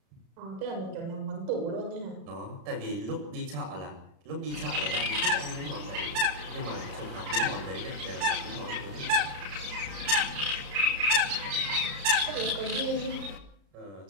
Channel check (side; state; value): left; late; 36 ms